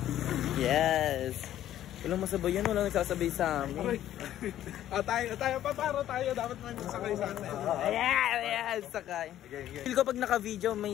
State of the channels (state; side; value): quieter; right; 12.2 dB